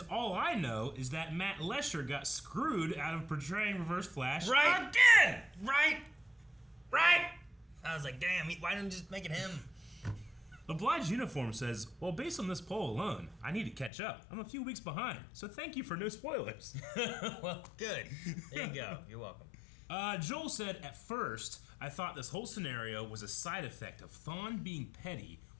all I know is that Matt Lesher got screwed out of portraying Reverse Flash again! Right! I was like, damn, why didn't you just make it him? Obliged Uniform says, well, based on this poll alone, I need to catch up. I'm a few weeks behind, so thank you for no spoilers. Well, good. There you go. You're welcome. Joel said, at first, I thought this whole scenario was a side effect of Thawne being petty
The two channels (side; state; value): right; drops out; at 13.9 s